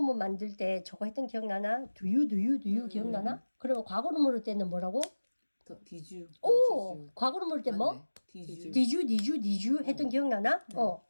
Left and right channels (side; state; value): both; inverted; correlation -1.00